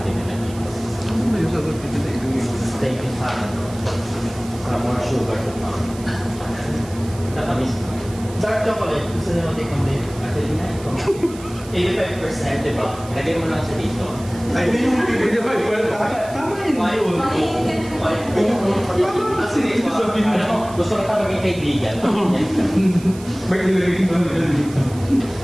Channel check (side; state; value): right; noise; hiss, 18 dB below the sound